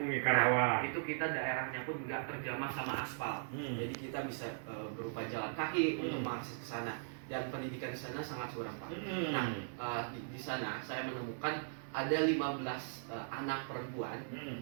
Nah, Karawang. itu kita daerahnya pun nggak terjamah sama aspal. Jadi kita bisa berupa jalan kaki untuk mengakses ke sana, dan pendidikan di sana sangat kurang Pak. Nah, di sana saya menemukan ada 15 anak perempuan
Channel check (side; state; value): left; silent; 52 dB below the other